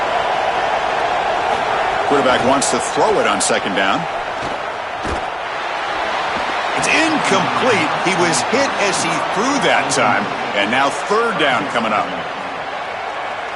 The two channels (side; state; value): both; identical; correlation 1.00